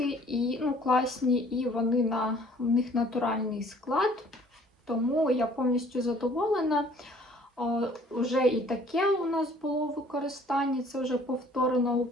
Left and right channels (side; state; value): both; normal; correlation 0.55